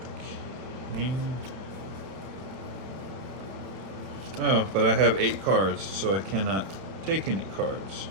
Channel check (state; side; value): late; left; 31 ms